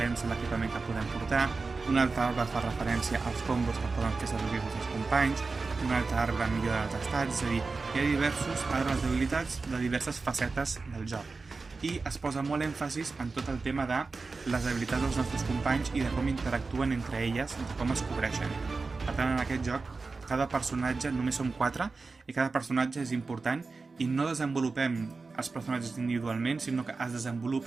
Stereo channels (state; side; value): quieter; left; 4.1 dB